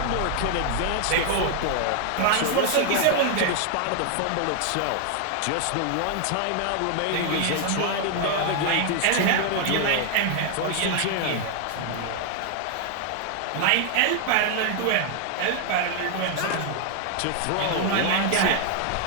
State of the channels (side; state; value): both; different; correlation 0.00